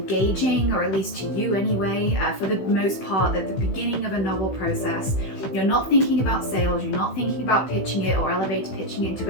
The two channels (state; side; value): late; right; 16 ms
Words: or at least to you anyway. For the most part, at the beginning of a novel process, you're not thinking about sales, you're not thinking about pitching it or elevator pitching it to